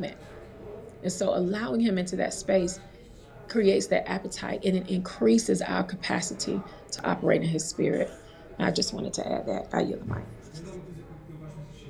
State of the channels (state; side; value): identical; both; correlation 1.00